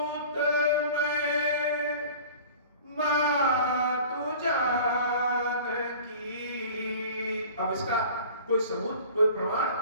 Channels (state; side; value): inverted; both; correlation -0.43